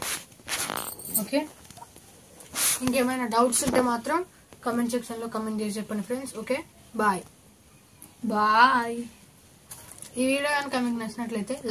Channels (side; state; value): both; identical; correlation 1.00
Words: ఓకే, ఇంకేమైనా డౌట్స్ ఉంటే మాత్రం కమెంట్ సెక్షన్లో కమెంట్ చేసి చెప్పండి ఫ్రెండ్స్. Okay, bye bye. ఈ వీడియో కనుక మీకు నచ్చినట్లయితే